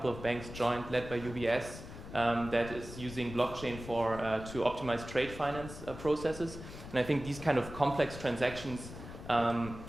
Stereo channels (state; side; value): noise; left; rumble, 12 dB below the sound